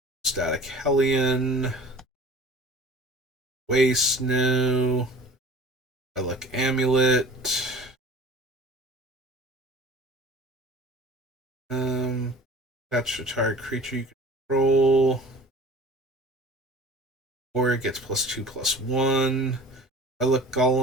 Static Hellion. Waste, no. Relic Amulet. Attach a target creature you control. Warrior gets +2/+1. Relic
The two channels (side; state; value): both; normal; correlation 0.44